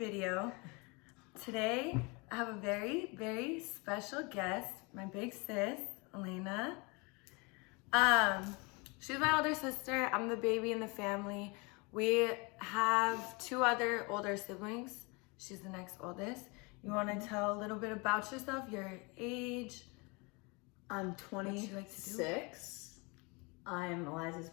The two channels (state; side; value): quieter; right; 28.7 dB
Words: Today, I have a very, very special guest, my big sis, Elena. She's my older sister. I'm the baby in the family. We have two other older siblings. She's the next oldest. You want to tell a little bit about yourself, your age? I'm What you like to do? 26. I'm Eliza's